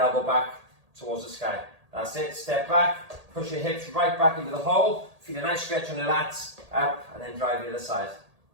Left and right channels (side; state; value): left; late; 1.8 ms